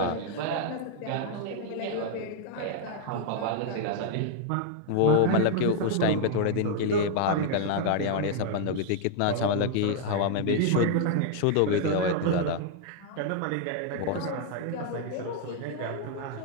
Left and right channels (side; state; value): both; different; correlation 0.00